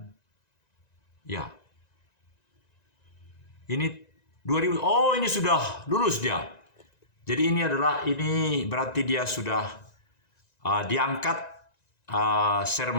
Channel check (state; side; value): late; right; 1.9 ms